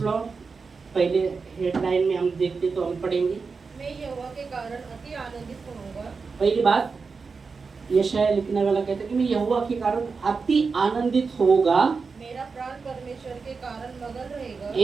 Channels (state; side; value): quieter; left; 4.8 dB